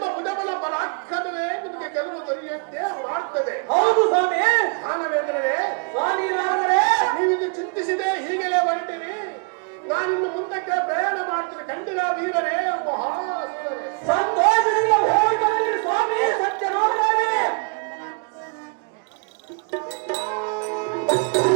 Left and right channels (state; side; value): quieter; left; 36.6 dB